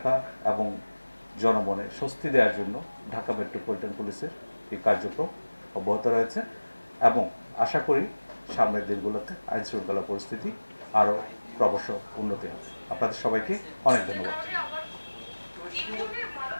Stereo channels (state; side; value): inverted; both; correlation -1.00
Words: এবং জনমনে স্বস্তি দেওয়ার জন্য ঢাকা মেট্রোপলিটন পুলিশের এই কার্যক্রম অব্যাহত রয়েছে এবং আশা করি সামনের দিনগুলোতে আইন শৃঙ্খলা পরিস্থিতি আরও ক্রমশ উন্নতি হবে। আপনাদের সবাইকে অনেক ধন্যবাদ।